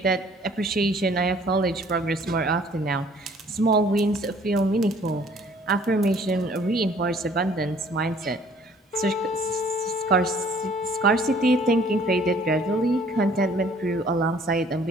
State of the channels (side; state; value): both; normal; correlation 0.57